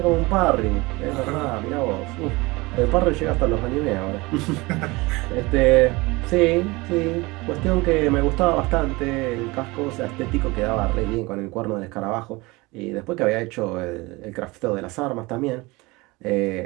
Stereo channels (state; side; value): quieter; left; 23.2 dB